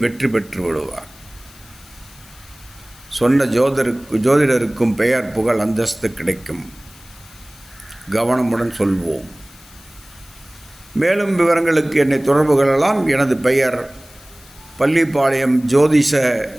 வெற்றி பெற்று விடுவார். சொன்ன ஜோதிடருக்கும் பெயர் புகழ் அந்தஸ்து கிடைக்கும். கவனமுடன் சொல்வோம். மேலும் விவரங்களுக்கு என்னை தொடர்பு கொள்ளலாம். எனது பெயர் பள்ளிப்பாளையம் ஜோதிஷ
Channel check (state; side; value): noise; left; hiss, 23 dB below the sound